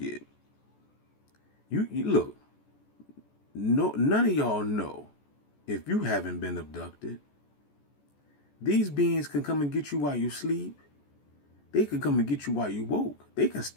You look, no, none of y'all know if you haven't been abducted. These beings can come and get you while you sleep. They can come and get you while you woke. They can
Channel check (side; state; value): right; late; 14 ms